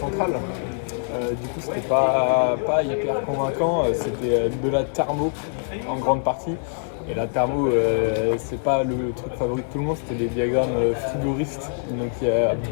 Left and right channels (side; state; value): right; silent; 63 dB below the other